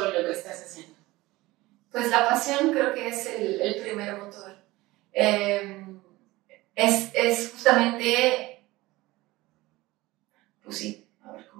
lo que estás haciendo? Pues la pasión creo que es el primer motor. Es justamente, pues sí, a ver,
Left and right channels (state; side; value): quieter; left; 19.5 dB